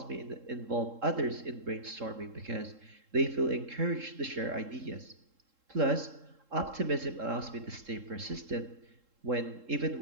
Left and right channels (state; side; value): late; left; 3.7 ms